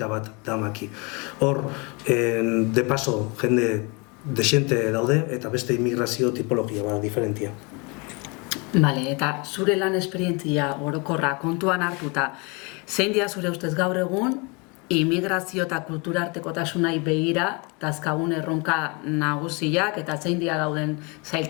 bat damaki. Hor, de paso, jende desente daude, eta beste immigrazio tipologia bat diferentia. Bale, eta zure lan esperientzia orokorra kontuan hartuta, zein dira zure ustez gaur egun, immigrazio eta kulturartekotasunai begira, dazkagun erronka nagusiak, eta zein dira dauden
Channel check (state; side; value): quieter; right; 30.2 dB